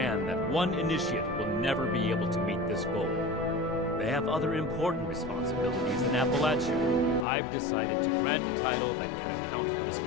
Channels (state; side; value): drops out; right; at 7.2 s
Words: that one initiate will never be able to meet this goal. They have other important responsibilities in Appalachia. I've decided to grant a title that can account for this